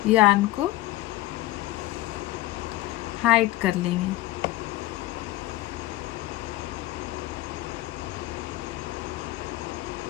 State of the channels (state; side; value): quieter; right; 16.7 dB